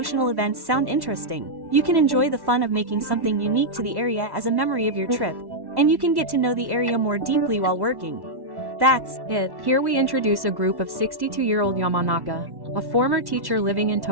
sound interesting. You can enjoy the fun of making something unique to the area as a memory of your trip, and you can get to know the area more deeply while working. That's it. Here we introduce a group of 62-year-old Yamanaka, a former teacher living in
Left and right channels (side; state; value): left; late; 1.1 ms